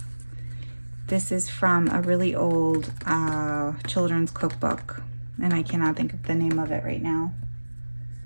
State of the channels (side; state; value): both; inverted; correlation -1.00